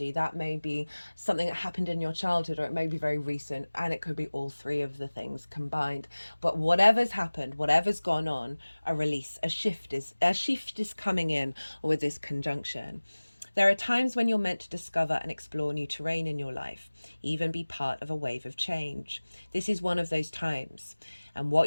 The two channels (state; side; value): inverted; both; correlation -1.00